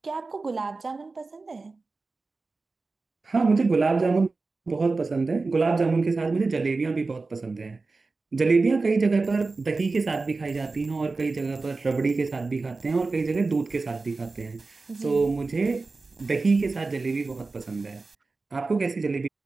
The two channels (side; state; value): left; quieter; 3.8 dB